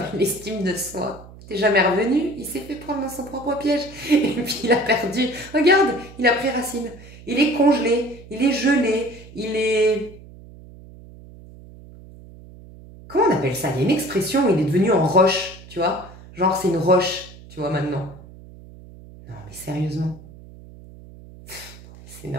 l'estime de soi. T'es jamais revenu, il s'est fait prendre dans son propre piège et puis il a perdu. Regarde, il a pré-racine, il est congelé, il est gelé, il est... Comment on appelle ça? Il y a une expression où il est devenu en roche, tu vois? Genre, c'est une roche, tu vois, maintenant. Non, mais sérieusement. C'est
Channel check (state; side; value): noise; right; hum, 19 dB below the sound